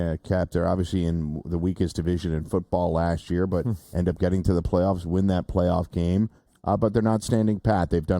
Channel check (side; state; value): both; identical; correlation 1.00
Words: Cap, they're obviously in the weakest division in football last year, but end up getting to the playoffs, win that playoff game. But they're not standing pat. They've done